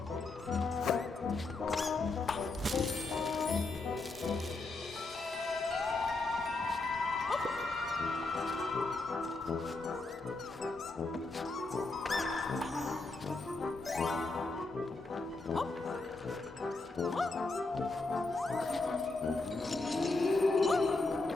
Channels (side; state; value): right; quieter; 3.4 dB